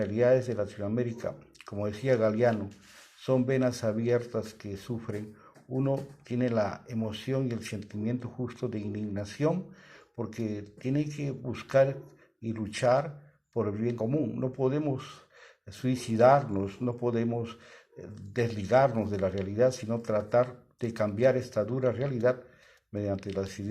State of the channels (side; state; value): both; identical; correlation 1.00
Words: de Latinoamérica, como decía Galeano, son venas abiertas que sufren. Uno tiene la emoción y el sentimiento justo de indignación porque tiene que buscar y luchar por el bien común. No podemos suicidarnos, no podemos desligarnos de la realidad, sino tratar de cambiar esta dura realidad mediante las